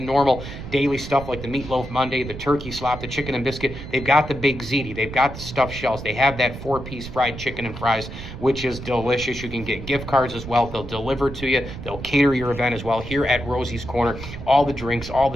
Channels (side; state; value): right; noise; rumble, 10 dB below the sound